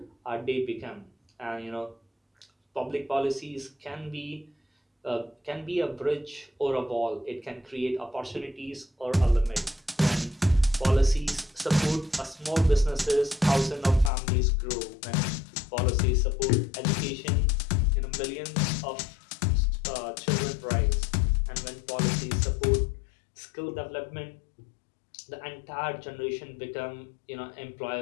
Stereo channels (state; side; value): drops out; right; at 14.1 s